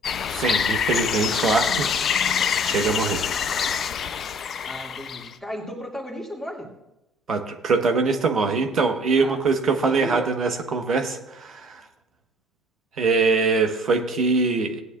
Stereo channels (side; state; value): both; normal; correlation 0.52